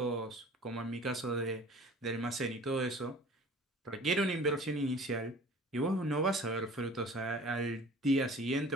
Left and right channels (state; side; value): normal; both; correlation 0.46